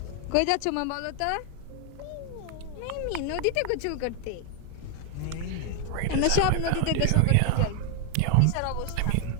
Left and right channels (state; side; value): different; both; correlation 0.01